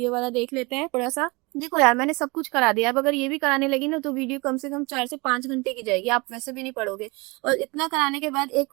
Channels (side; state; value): left; quieter; 26.4 dB